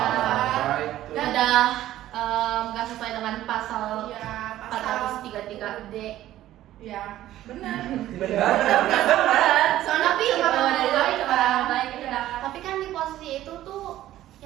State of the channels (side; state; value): left; quieter; 13.8 dB